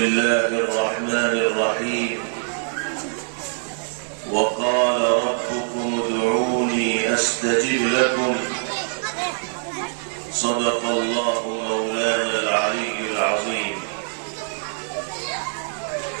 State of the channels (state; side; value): silent; left; 63 dB below the other